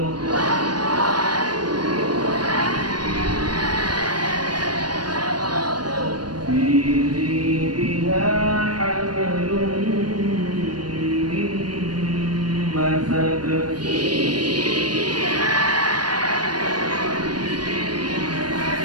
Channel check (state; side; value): late; left; 0.70 ms